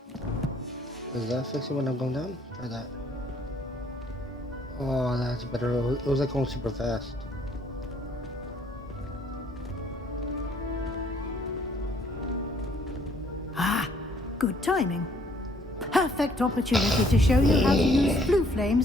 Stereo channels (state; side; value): normal; both; correlation 0.63